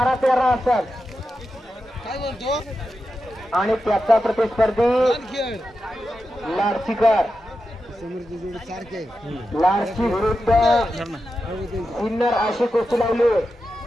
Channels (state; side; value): normal; both; correlation 0.90